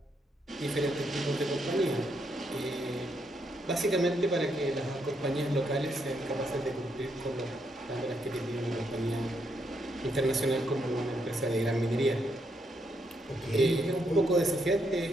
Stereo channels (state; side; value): normal; both; correlation 0.77